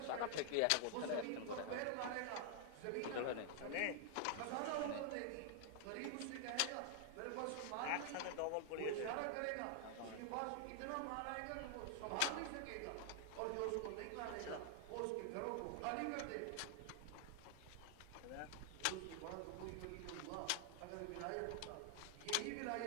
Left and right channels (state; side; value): different; both; correlation 0.00